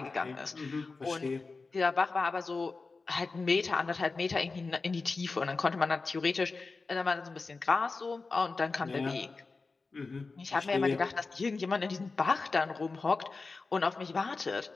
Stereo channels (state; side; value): quieter; right; 4.0 dB